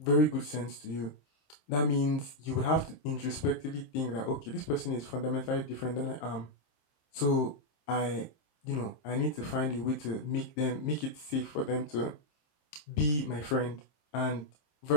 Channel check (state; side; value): late; right; 27 ms